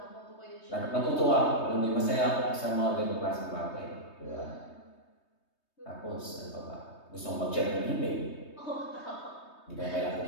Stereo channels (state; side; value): late; right; 3.2 ms